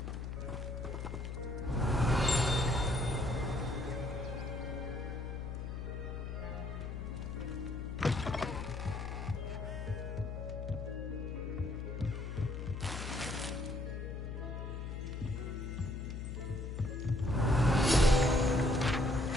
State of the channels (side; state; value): left; noise; hum, 5 dB below the sound